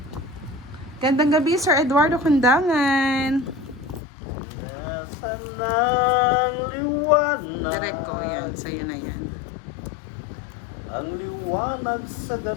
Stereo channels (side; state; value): right; drops out; at 4.0 s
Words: Gandang gabi Sir Eduardo Kundangan. Nasaan ang liwanag? Derek ko yan, sa'yo na yan. Ang liwanag sa